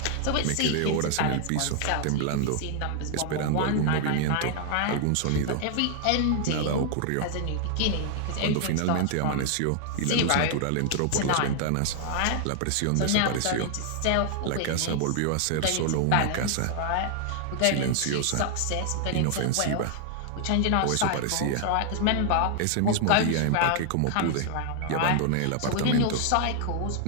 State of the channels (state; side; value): different; both; correlation 0.00